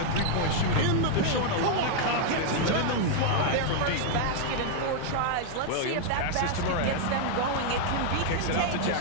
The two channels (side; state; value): both; different; correlation 0.00